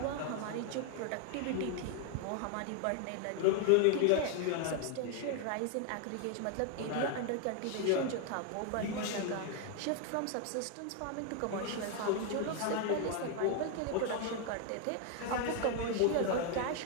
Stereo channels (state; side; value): different; both; correlation 0.01